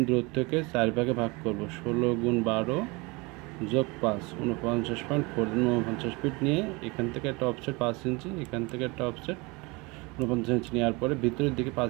দূরত্বকে 4 ভাগে ভাগ করব। 16 গুণ 12 যোগ 5 49.4 49 ফিট নিয়ে এখান থেকে একটা অফসেট 5 ইঞ্চি, এখান থেকে একটা অফসেট 49 ইঞ্চি নেওয়ার পরে ভিতরের দিকে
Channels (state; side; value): quieter; left; 26.2 dB